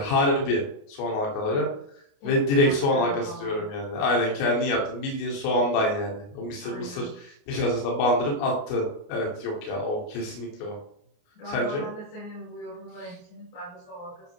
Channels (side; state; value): right; late; 29 ms